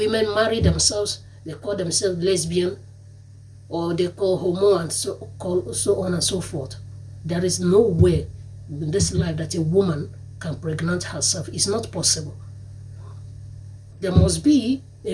marry themselves, they call themselves lesbian, or they call homo, and so on and so forth. There is no way in this life that a woman can pregnant herself. It's not possible. There must be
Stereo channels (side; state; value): both; identical; correlation 1.00